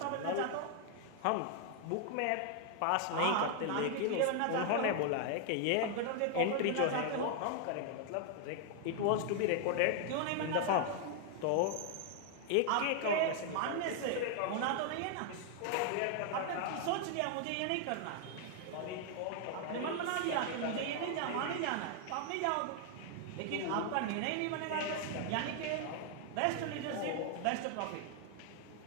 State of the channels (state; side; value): different; both; correlation 0.00